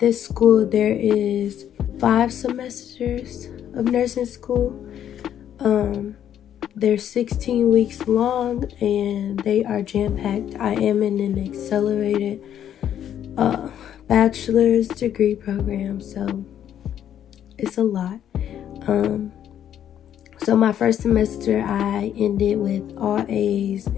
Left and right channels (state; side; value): quieter; right; 10.1 dB